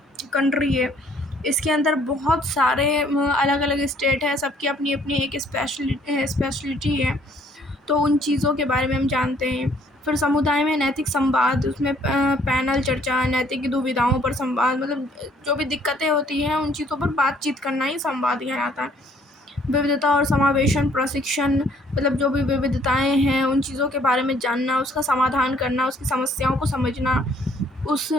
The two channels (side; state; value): both; normal; correlation 0.62